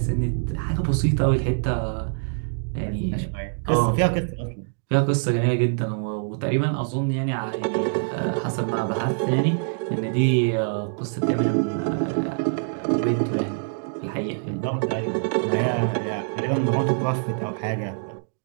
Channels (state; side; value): silent; left; digital silence